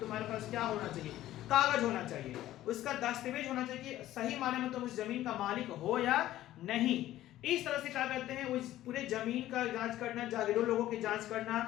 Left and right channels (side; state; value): right; quieter; 14.2 dB